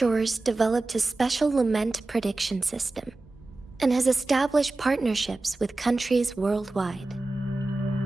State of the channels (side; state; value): left; quieter; 3.1 dB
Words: developed a special lament prediction system and has established partnerships with countries worldwide.